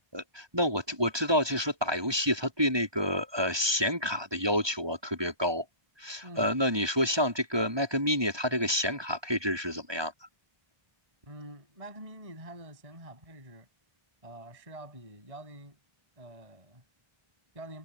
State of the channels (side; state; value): left; late; 1.2 ms